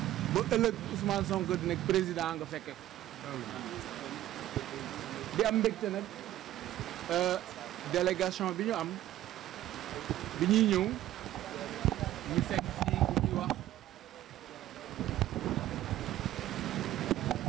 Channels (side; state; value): left; quieter; 13.7 dB